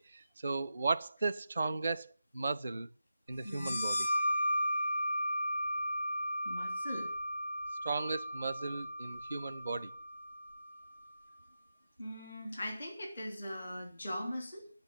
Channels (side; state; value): both; inverted; correlation -0.90